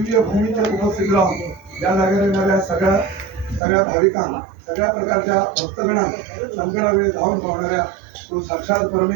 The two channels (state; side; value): drops out; left; at 3.6 s